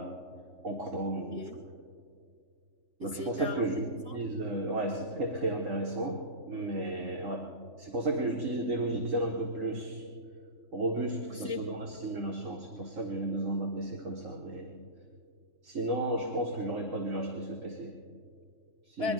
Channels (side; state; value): left; late; 2.9 ms